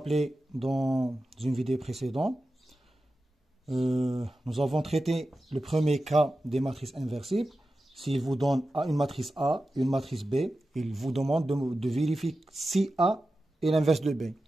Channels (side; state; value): both; normal; correlation 0.93